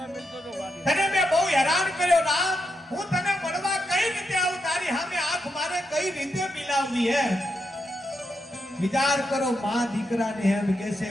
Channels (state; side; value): normal; both; correlation 0.84